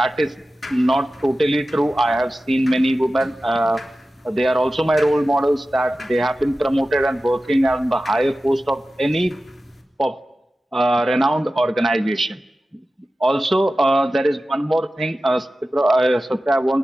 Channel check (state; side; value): normal; both; correlation 0.94